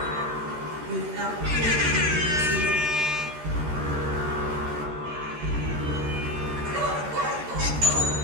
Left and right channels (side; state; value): left; late; 13 ms